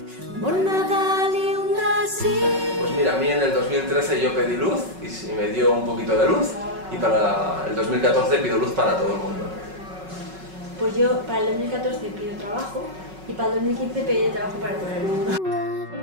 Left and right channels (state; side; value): late; left; 5.4 ms